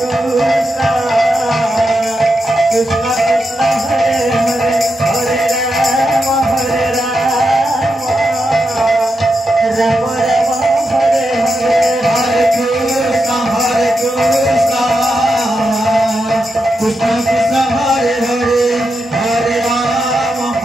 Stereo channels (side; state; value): both; normal; correlation 0.86